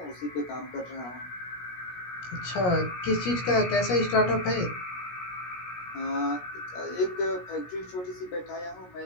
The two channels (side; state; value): right; late; 17 ms